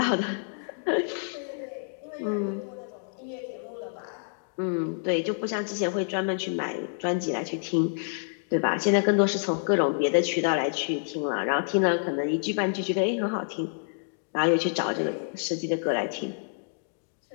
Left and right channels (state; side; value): silent; right; digital silence